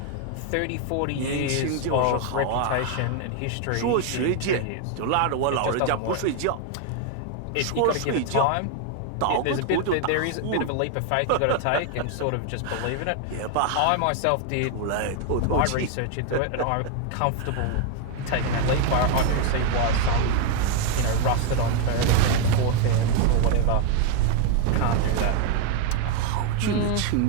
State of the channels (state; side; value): different; both; correlation 0.01